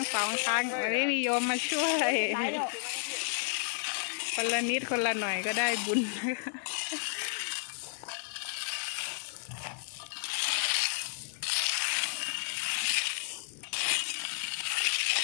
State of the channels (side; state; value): right; silent; 56 dB below the other